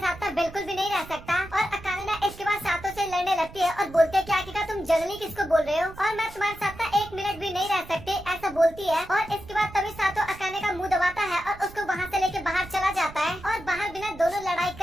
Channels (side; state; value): right; noise; rumble, 17 dB below the sound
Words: बिल्कुल भी नहीं रह सकता। और अकाने ना इसके बाद सातो से लड़ने लगती है और बोलती है क्या तुम जंगली किसको बोल रहे हो और मैं तुम्हारे साथ ना 1 मिनट भी नहीं रह सकती, ऐसा बोलती है। और इसके बाद तभी सातो अकाने का मुंह दबाता है और उसको वहाँ से लेके बाहर चला जाता है। और बाहर बिना दोनों लड़ाई